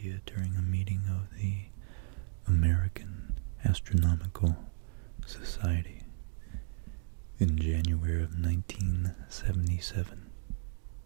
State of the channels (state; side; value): silent; left; digital silence